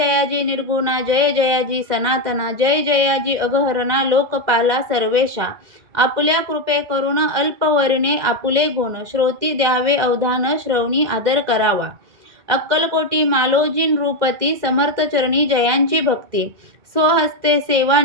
निर्गुणा, जय जयाजी सनातना, जय जयाजी अगहरणा, लोकपाला सर्वेशा। आपल्या कृपे करून अल्पवर्णे आपुले गुण, श्रोती द्यावे अवधान, श्रवणी आदर करावा। अक्कलकोटी मालोजीन रूपती, समर्थ चरणी जयांची भक्ती। स्वहस्ते सेवा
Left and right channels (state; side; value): late; left; 2.0 ms